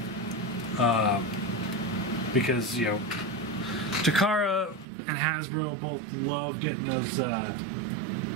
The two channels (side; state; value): left; drops out; at 4.9 s